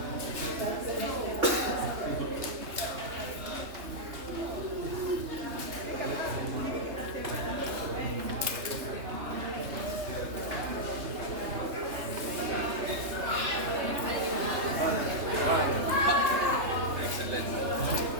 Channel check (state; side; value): late; left; 3.3 ms